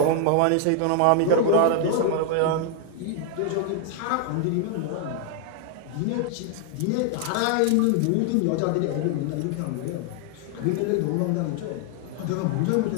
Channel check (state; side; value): different; both; correlation 0.00